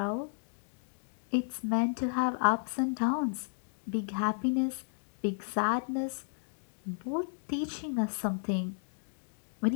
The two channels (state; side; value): silent; right; digital silence